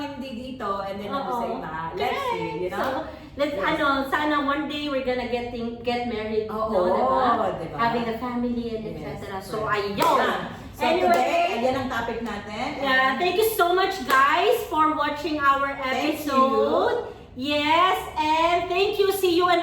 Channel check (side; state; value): both; identical; correlation 1.00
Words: dito, and then nandun sa iba. Let's see, So, let's, Yes. sana one day we're gonna get married, Oo, diba? diba? Having a family and Yes, etc. So, right. ayun. So today, ayan ang topic natin. Yeah, thank you so much guys for watching our Thank episode. Yes, and thank you. See you in